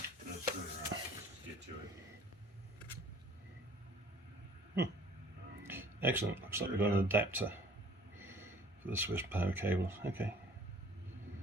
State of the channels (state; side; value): normal; both; correlation 0.52